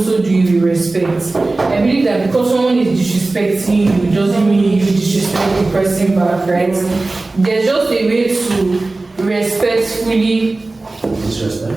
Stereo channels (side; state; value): left; quieter; 3.2 dB